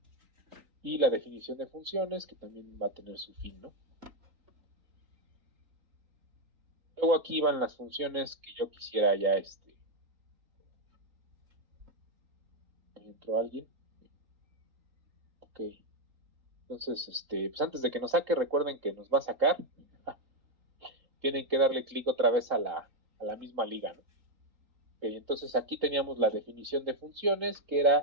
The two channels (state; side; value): late; left; 3.8 ms